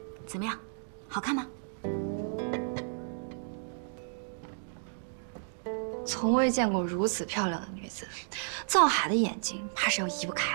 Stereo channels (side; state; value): left; silent; digital silence